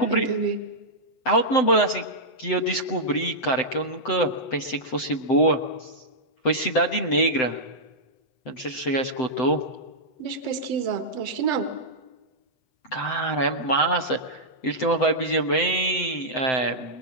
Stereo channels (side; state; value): right; late; 7.8 ms